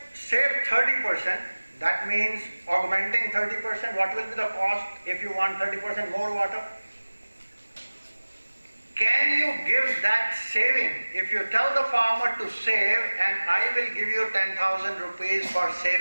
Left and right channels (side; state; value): both; inverted; correlation -1.00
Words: save 30%, that means augmenting 30%. What will be the cost if you want 30% more water? Can you give that saving? If you tell the farmer to save and I will give you 10,000 rupees for